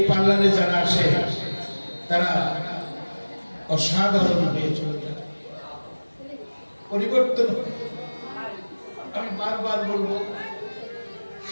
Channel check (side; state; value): both; inverted; correlation -1.00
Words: পার্লারে যারা আসে তারা অসাধারণ হয়ে চলে যায়, পরিবর্তন। আমি বারবার বলবো,